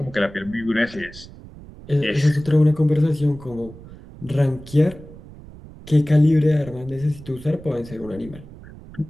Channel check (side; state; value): right; noise; rumble, 18 dB below the sound